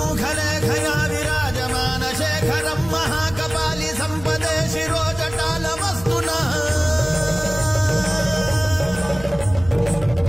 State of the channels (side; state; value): left; noise; hum, 15 dB below the sound